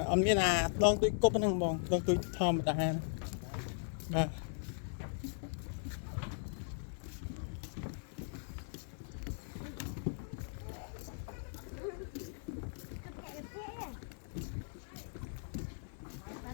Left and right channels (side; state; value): right; silent; 52 dB below the other